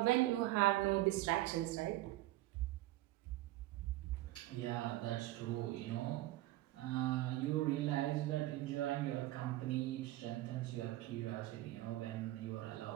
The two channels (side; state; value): left; quieter; 16.9 dB